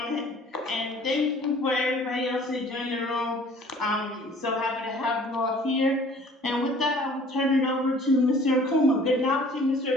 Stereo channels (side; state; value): both; normal; correlation 0.51